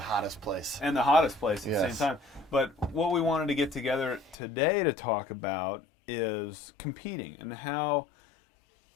hottest place. And the hottest place at the Yes. same time. But what we wanted to get together today to talk about is competing and how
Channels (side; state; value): right; drops out; at 4.4 s